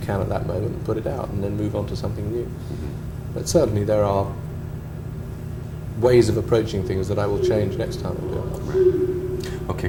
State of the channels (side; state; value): both; identical; correlation 1.00